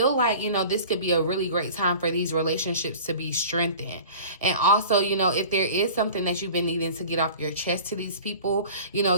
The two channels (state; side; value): inverted; both; correlation -0.41